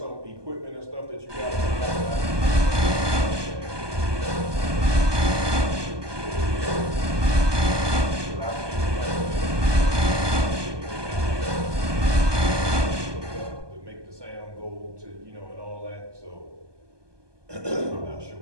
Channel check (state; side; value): late; left; 1.2 ms